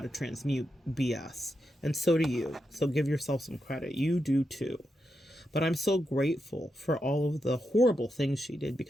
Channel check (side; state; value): both; normal; correlation 0.86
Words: transmute BS. And so do you. So give yourself some credit. You do too. But I'm so grateful for all of the horrible things she did,